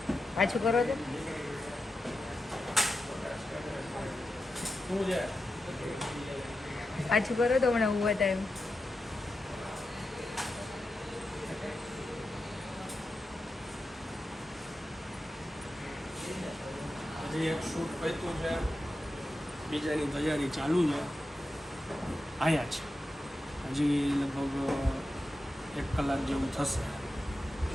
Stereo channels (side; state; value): both; normal; correlation 0.90